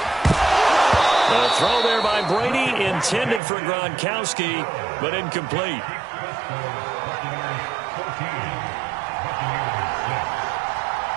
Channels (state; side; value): drops out; left; at 3.4 s